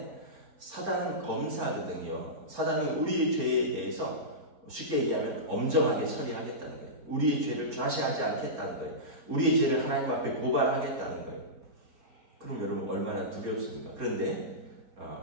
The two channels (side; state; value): left; late; 4.4 ms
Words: 사단은 검사거든요. 사단은 우리의 죄에 대해서 쉽게 얘기하면 엄정하게 처리하겠다는 거예요. 우리의 죄를 좌시하지 않겠다는 거예요. 우리의 죄를 하나님 앞에 고발하겠다는 거예요. 그럼 여러분 얼마나 두렵습니까? 그런데